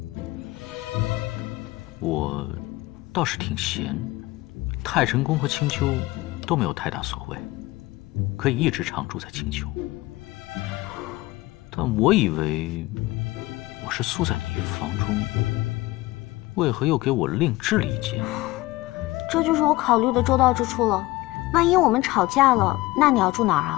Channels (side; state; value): right; quieter; 19.6 dB